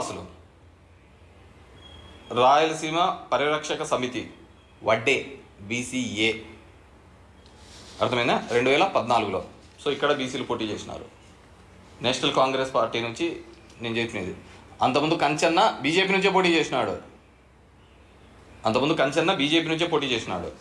Rayalaseema Parirakshaka Samithi, Vadde BCA. అర్థమైందా? 2014లో సో ఇక్కడ బీసీలు పోటీ చేసినారు. నేషనల్ కాంగ్రెస్ పార్టీ నుంచి నేను చెప్పినది. అంతకుముందు కంచన్న బీజేపీ నుంచే పోటీ చేసినాడు.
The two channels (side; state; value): both; identical; correlation 1.00